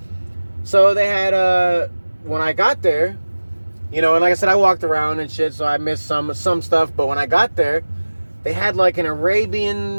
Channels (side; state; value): both; inverted; correlation -1.00